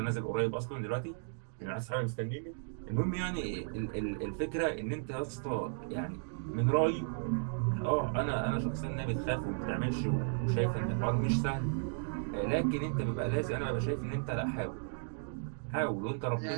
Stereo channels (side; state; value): left; silent; digital silence